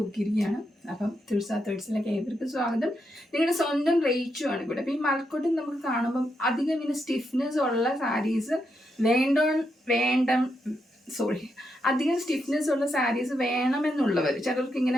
അപ്പം തുൾസാ തേർഡ്സിലേക്ക് ഏവർക്ക് സ്വാഗതം. നിങ്ങളുടെ സ്വന്തം റേച്ചു ആണ് ഇവിടെ. അപ്പം ഈ മഴക്കോട്ടൻ നമുക്ക് കാണുമ്പം അധികം ഇങ്ങനെ സ്റ്റിഫ്നെസ് ഉള്ള സാരീസ് അധികം സ്റ്റിഫ്നെസ് ഉള്ള സാരീസ് വേണമെന്നുള്ളവർ, ചിലർക്ക്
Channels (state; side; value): normal; both; correlation 0.82